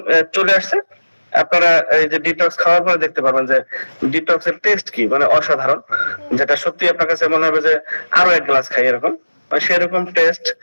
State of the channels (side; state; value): both; inverted; correlation -1.00